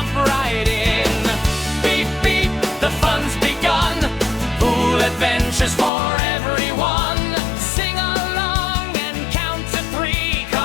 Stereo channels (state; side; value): drops out; right; at 5.9 s